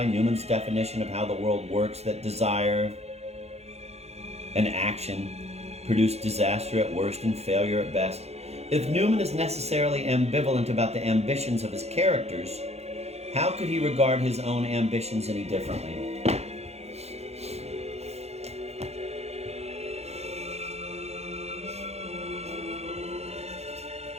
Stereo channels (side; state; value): left; late; 0.31 ms